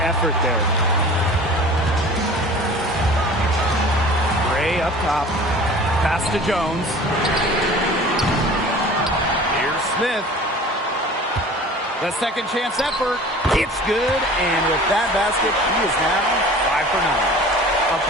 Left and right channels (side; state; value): both; normal; correlation 0.43